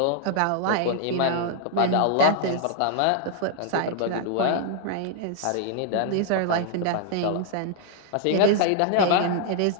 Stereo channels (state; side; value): different; both; correlation -0.01